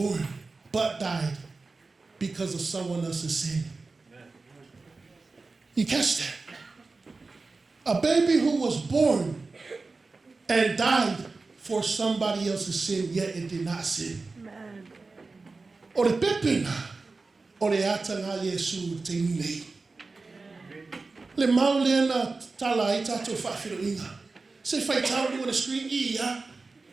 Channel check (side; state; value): left; quieter; 3.8 dB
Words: but died because of someone else's sin. You catch that? A baby who was born and died for somebody else's sin, yet it did not sin. O le pepena, o le atanga Yesu te nei. Le mau lena tala i tato whawhiro inga. Se whai tau on the screen, ia.